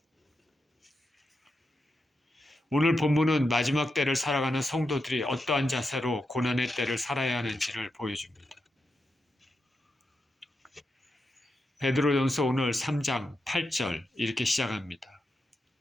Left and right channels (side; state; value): both; normal; correlation 0.87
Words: 오늘 본문은 마지막 때를 살아가는 성도들이 어떠한 자세로 고난의 때를 살아야 하는지를 보여줍니다. 베드로전서 오늘 3장 8절 이렇게 시작합니다.